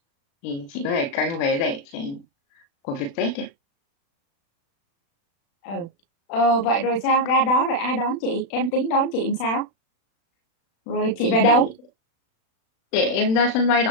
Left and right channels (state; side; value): late; right; 36 ms